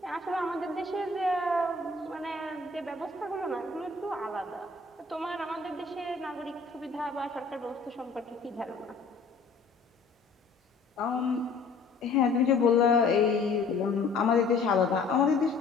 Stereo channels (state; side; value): quieter; right; 4.1 dB